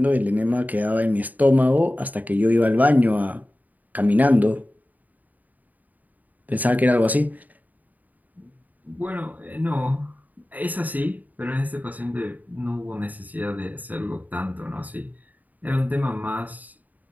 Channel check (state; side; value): late; left; 0.079 ms